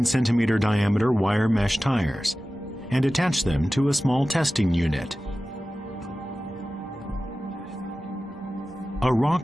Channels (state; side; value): normal; both; correlation 0.95